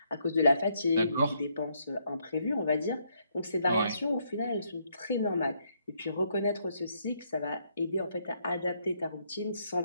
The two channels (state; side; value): inverted; both; correlation -0.74